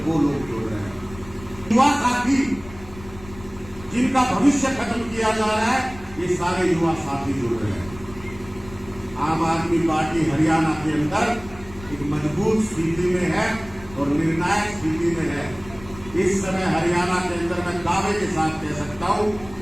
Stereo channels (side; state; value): left; noise; rumble, 18 dB below the sound